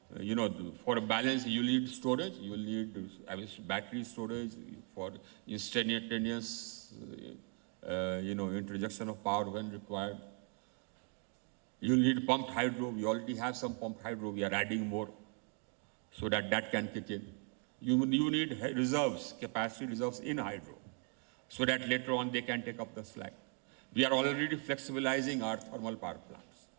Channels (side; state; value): left; quieter; 38.3 dB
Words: a balance, you need storage. You will need battery storage for instantaneous, introduction of power when required. You need pumped hydro. We already have some pumped hydro. We are adding more so that can kick in. You need reserves, capacity reserves in hydro, so that later on they can take up the slack. We are already flexibilizing our thermal power plants.